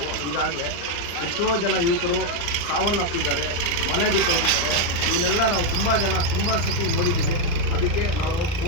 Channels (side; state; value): right; late; 34 ms